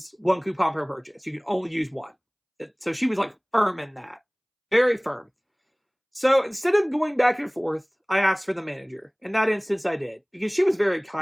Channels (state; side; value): identical; both; correlation 1.00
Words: 1 coupon per purchase. You can only use 1. So she was like firm in that. Very firm. So instead of going back and forth, I asked for the manager. In that instance, I did. Because she was very